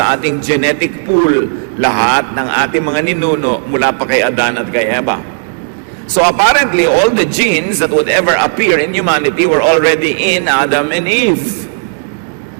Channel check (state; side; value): silent; left; digital silence